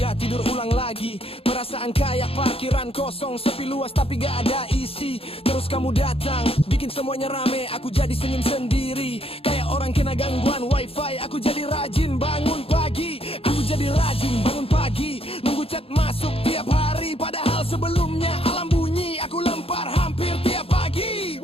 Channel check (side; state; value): right; late; 0.27 ms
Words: tidur ulang lagi. Perasaan kayak parkiran kosong, sepi luas tapi gak ada isi. Terus kamu datang, bikin semuanya rame, aku jadi senyum sendiri. Kayak orang kena gangguan wifi, aku jadi rajin bangun pagi. Aku jadi rajin bangun pagi, nunggu chat masuk tiap hari. Padahal sebelumnya alam bunyi, aku lempar hampir tiap pagi.